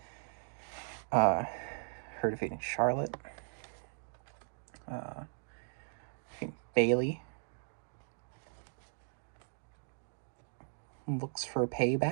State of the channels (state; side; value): silent; left; digital silence